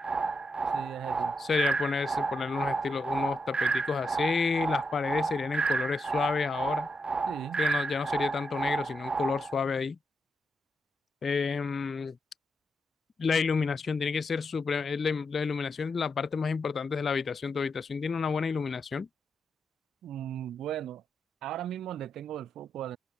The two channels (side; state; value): both; normal; correlation 0.84